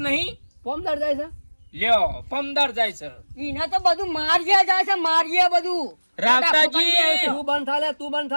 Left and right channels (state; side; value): inverted; both; correlation -1.00